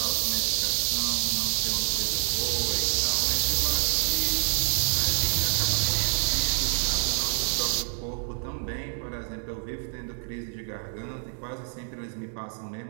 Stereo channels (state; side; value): silent; left; digital silence